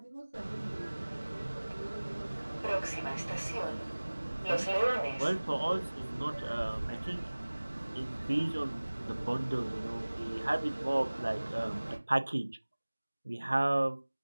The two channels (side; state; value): both; inverted; correlation -1.00